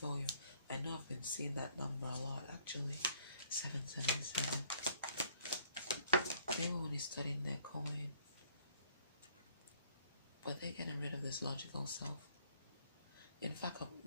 you. I know I've been seeing that number a lot actually. 777. They were only studying their coin. But they're getting rid of this logical self. In fact, at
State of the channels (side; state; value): both; inverted; correlation -0.60